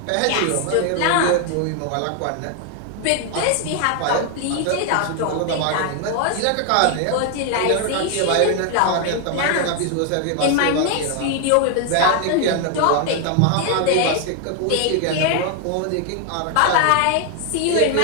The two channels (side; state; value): both; different; correlation 0.00